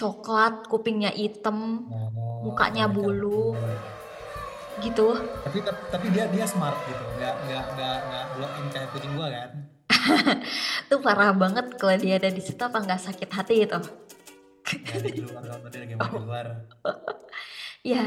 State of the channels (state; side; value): identical; both; correlation 1.00